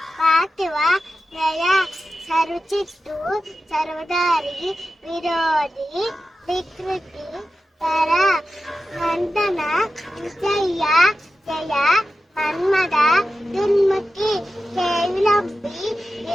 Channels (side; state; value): both; normal; correlation 0.92